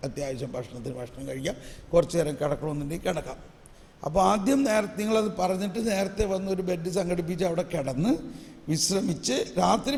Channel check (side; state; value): both; identical; correlation 1.00